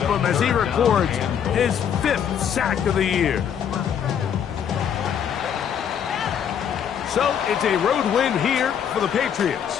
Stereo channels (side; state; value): right; quieter; 8.5 dB